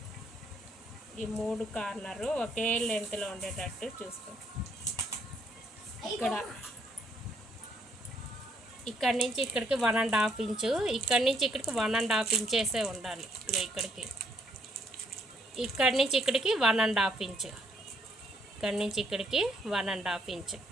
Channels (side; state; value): both; normal; correlation 0.70